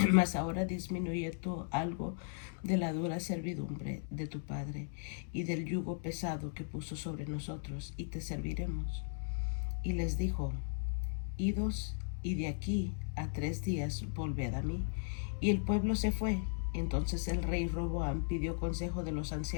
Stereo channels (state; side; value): silent; right; digital silence